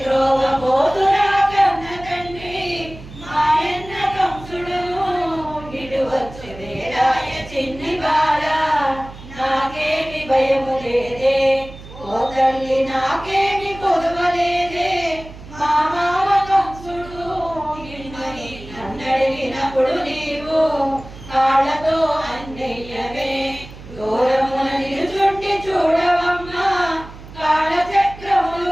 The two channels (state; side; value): noise; right; hum, 16 dB below the sound